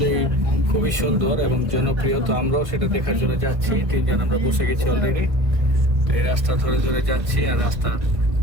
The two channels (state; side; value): late; left; 1.5 ms